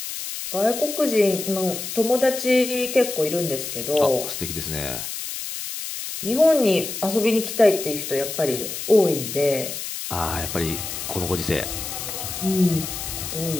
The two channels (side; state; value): left; noise; hiss, 6 dB below the sound